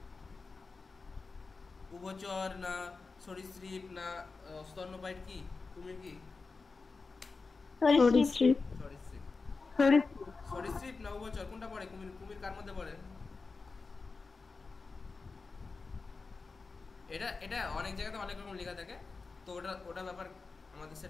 উভচর না সরীসৃপ না স্তন্যপায়ী? কি কুমির কি? সরীসৃপ না উভচর, কোনটা পড়ে? কুমির কুমির কার মধ্যে পড়ে? এটা অনেক জায়গাতে অনেক রকম লেখা থাকে, তো ওটা ব্যাপার আমাদের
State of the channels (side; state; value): right; quieter; 4.2 dB